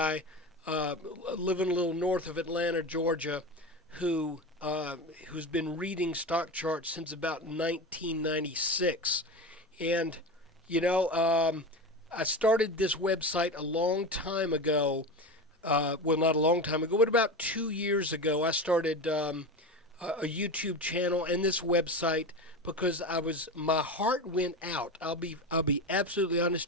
living a little north of Atlanta, Georgia, who's been reading stock charts since about 1996. And, I started this website a long time ago. Well, not a long time ago, but about 2 years ago, I started a YouTube channel and this website because my heart went out. I'll be absolutely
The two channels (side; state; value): both; normal; correlation 0.25